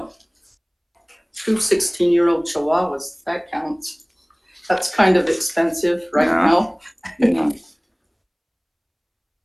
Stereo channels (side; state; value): both; identical; correlation 1.00